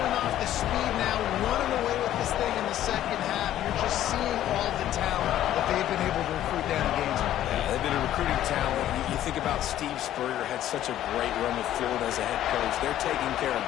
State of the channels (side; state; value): right; quieter; 12.5 dB